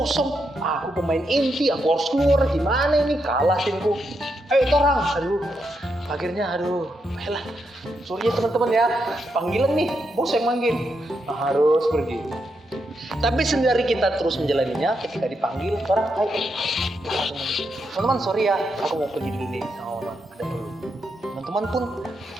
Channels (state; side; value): normal; both; correlation 0.82